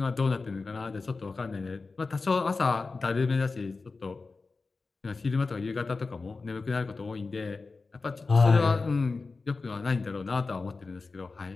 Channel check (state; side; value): quieter; right; 4.0 dB